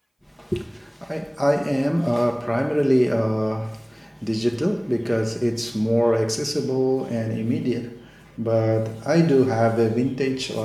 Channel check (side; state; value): both; identical; correlation 1.00